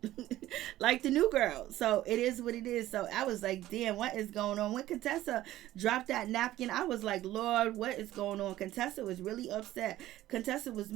the new girl. So it is what it is. So I was like, damn, what is going on? When Contessa dropped that napkin, I was like, Lord, what is going on? Contessa was really upset. Contessa was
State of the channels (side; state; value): left; quieter; 14.7 dB